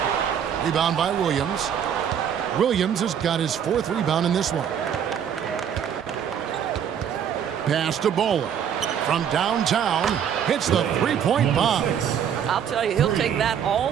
Rebound by Williams. Williams has got his 4th rebound in this one. Pass to Baller. From downtown, hits the 3-point bomb. I'll tell you, he'll take that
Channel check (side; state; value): left; quieter; 8.5 dB